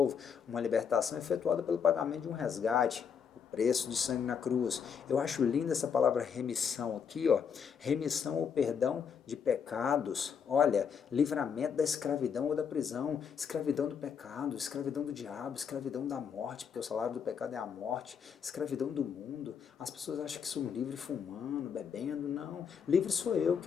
uma libertação efetuada pelo pagamento de um resgate, o preço de sangue na cruz. Eu acho linda essa palavra remissão aqui, ó, remissão ou perdão de pecados, olha, livramento da escravidão ou da prisão, escravidão do pecado, escravidão do diabo, escravidão da morte, porque o salário do pecado é a morte, escravidão do mundo. As pessoas acham que sou livre fumando, bebendo, não. Livre sou eu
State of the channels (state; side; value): quieter; right; 6.9 dB